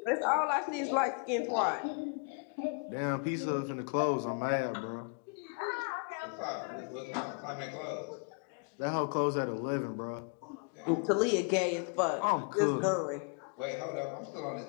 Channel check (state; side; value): quieter; right; 38.1 dB